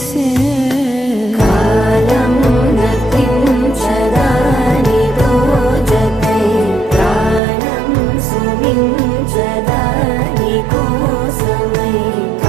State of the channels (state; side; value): drops out; left; at 7.4 s